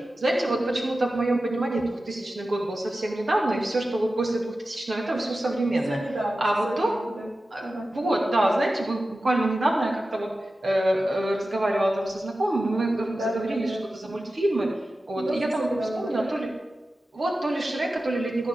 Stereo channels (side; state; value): both; normal; correlation 0.94